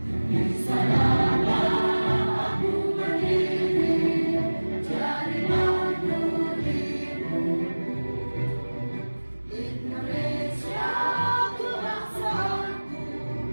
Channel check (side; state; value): both; inverted; correlation -1.00